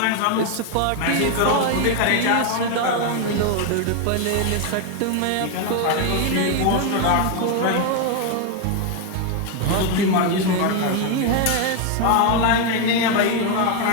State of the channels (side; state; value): both; different; correlation 0.01